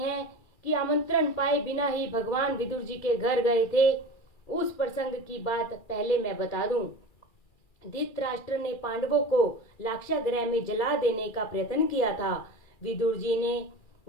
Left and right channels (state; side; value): late; right; 2.4 ms